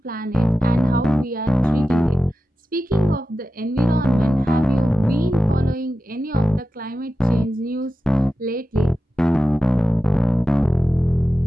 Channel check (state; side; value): normal; both; correlation 0.93